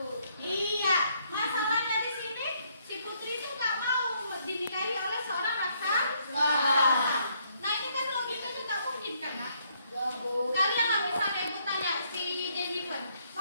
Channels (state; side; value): inverted; both; correlation -0.70